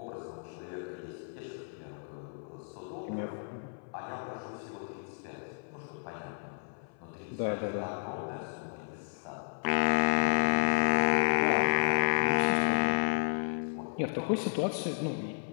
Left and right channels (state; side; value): silent; right; 56 dB below the other